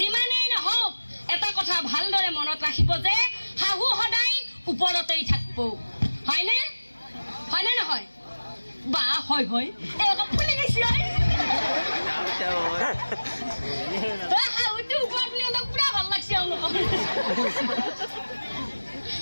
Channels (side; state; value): both; inverted; correlation -1.00